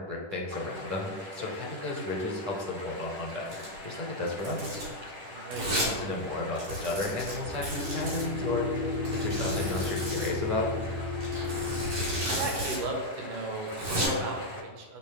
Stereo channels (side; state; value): left; late; 10 ms